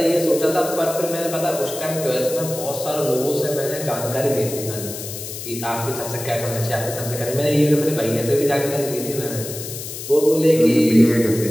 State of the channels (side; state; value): left; noise; hiss, 9 dB below the sound